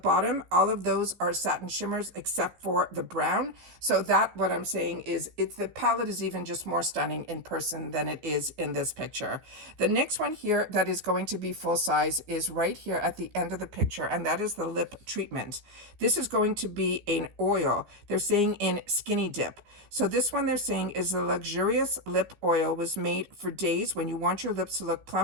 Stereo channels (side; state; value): left; late; 15 ms